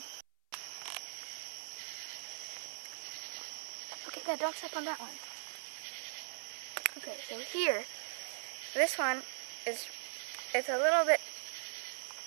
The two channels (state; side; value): silent; left; 51 dB below the other